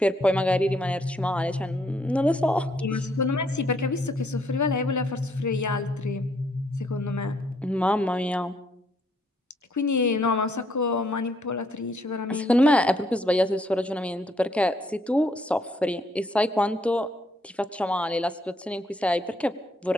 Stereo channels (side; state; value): both; normal; correlation 0.70